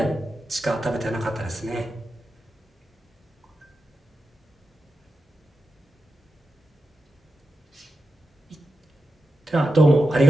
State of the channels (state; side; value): normal; both; correlation 0.90